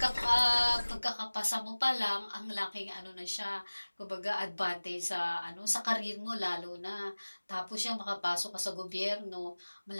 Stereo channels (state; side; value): inverted; both; correlation -1.00